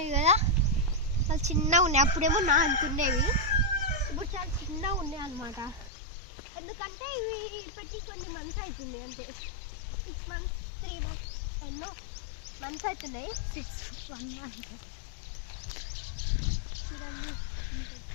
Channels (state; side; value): drops out; right; at 5.9 s